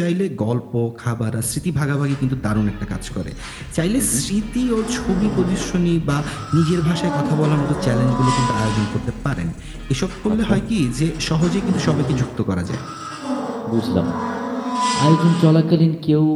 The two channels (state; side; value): identical; both; correlation 1.00